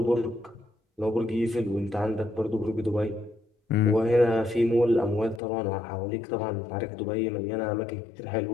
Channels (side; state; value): right; drops out; at 5.4 s